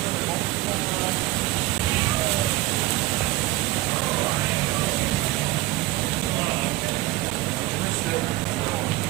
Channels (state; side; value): quieter; left; 18.4 dB